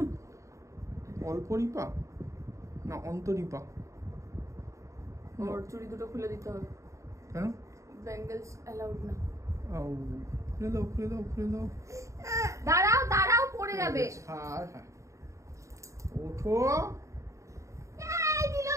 অল্পরিপা না অন্তরিপা? ওর চুড়ি দুটো খুলে দিতে হবে। কেন? ব্যাঙ্গেলস অ্যালাউড না। খুলে দাও খুলে দাও খুলে দাও। দাঁড়াও দাঁড়াও, পড়ে যাবে। হ্যাঁ হ্যাঁ, ওঠো। এই দিল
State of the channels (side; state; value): left; late; 0.15 ms